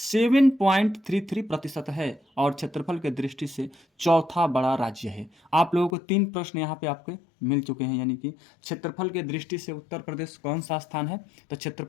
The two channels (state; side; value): drops out; right; at 6.0 s